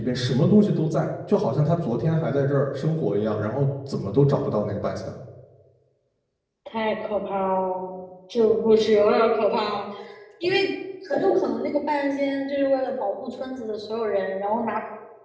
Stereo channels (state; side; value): identical; both; correlation 1.00